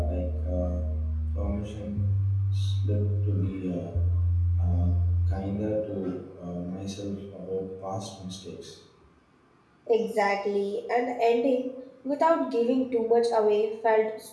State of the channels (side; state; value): both; identical; correlation 1.00